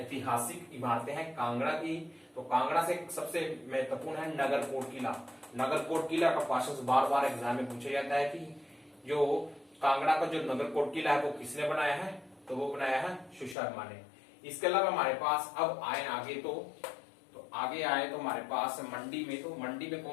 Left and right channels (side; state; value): right; drops out; at 13.6 s